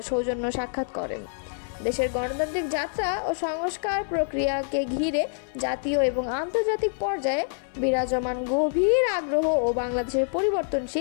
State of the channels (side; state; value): right; silent; 60 dB below the other